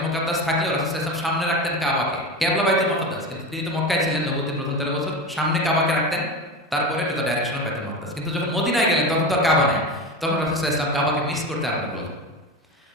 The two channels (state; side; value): normal; both; correlation 0.24